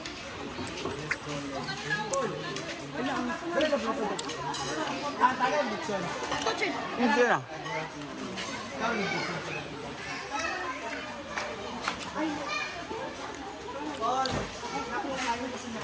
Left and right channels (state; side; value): identical; both; correlation 1.00